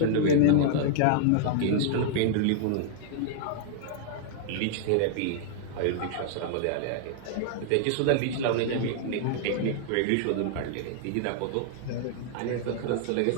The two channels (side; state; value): both; different; correlation 0.00